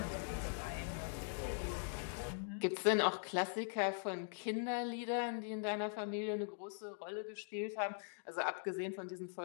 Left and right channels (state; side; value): silent; right; digital silence